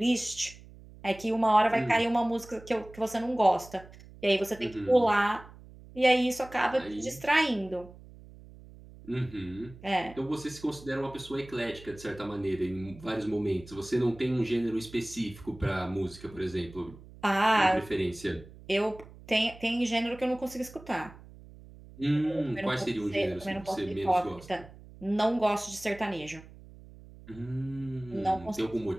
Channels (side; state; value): right; noise; hum, 19 dB below the sound